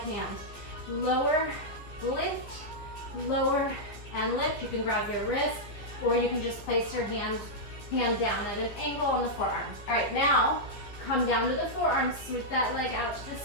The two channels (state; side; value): late; right; 15 ms